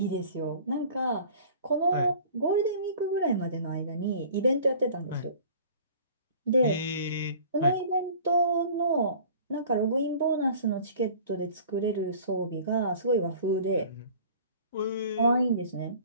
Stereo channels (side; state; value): both; inverted; correlation -0.46